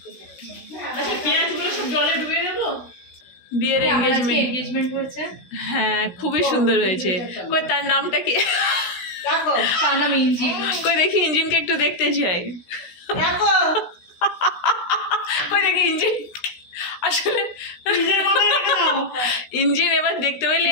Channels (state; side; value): late; right; 16 ms